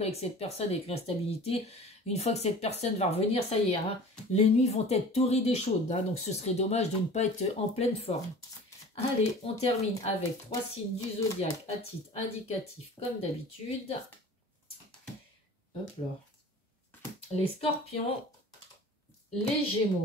avec cette personne avec l'instabilité, une fois que cette personne va revenir, ça y est, hein, les nuits vont être torrides et chaudes, hein, donc ce serait dommage de ne pas être en pleine forme. Allez, on termine avec 3 signes du zodiaque à titre indicatif comme d'habitude. Hop là. Les scorpions, les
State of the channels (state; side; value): normal; both; correlation 0.42